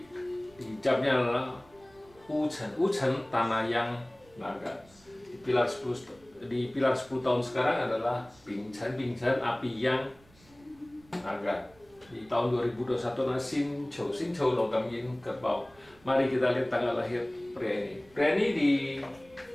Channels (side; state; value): right; noise; rumble, 28 dB below the sound